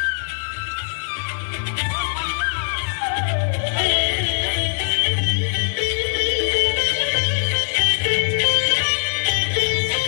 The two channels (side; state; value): right; silent; digital silence